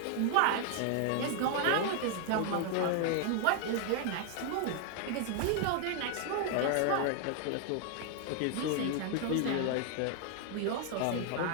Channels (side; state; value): both; different; correlation 0.00